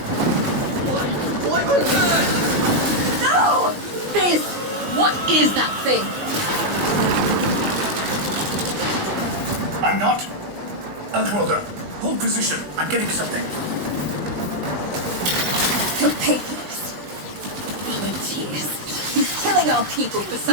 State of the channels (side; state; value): left; late; 20 ms